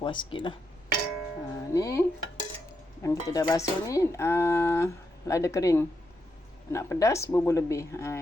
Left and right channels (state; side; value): normal; both; correlation 0.82